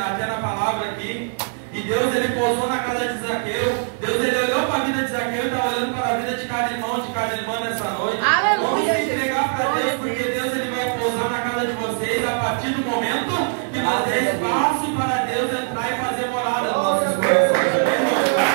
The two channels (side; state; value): left; silent; digital silence